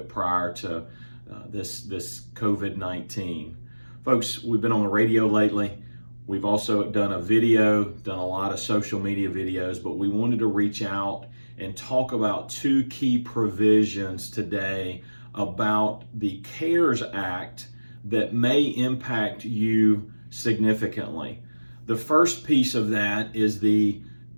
prior to this COVID-19. Folks, we've been on the radio lately. We've also done a video, done a lot of social media videos, but we wanted to reach out and talk about two key provisions today about the CARES Act that may impact you significantly. The first piece of that is the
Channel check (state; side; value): inverted; both; correlation -1.00